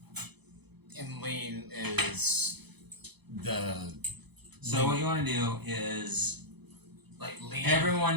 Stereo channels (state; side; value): late; left; 0.98 ms